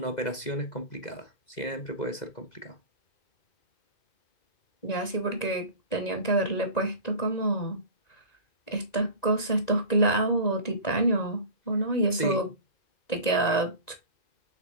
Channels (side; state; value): right; late; 1.9 ms